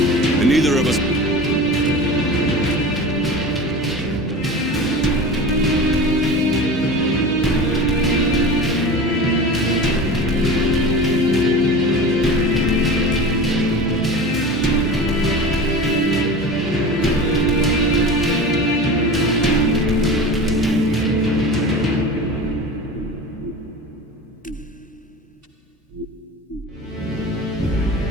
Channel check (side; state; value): both; normal; correlation 0.33